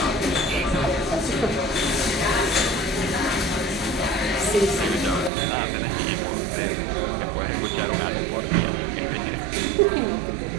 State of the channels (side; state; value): left; drops out; at 5.3 s